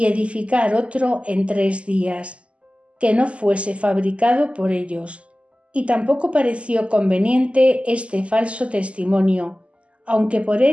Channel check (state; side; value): late; left; 0.059 ms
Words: edificar otro en 3 días, que no fuese fabricado por ellos, y tampoco pareció conveniente este falso testimonio, aunque por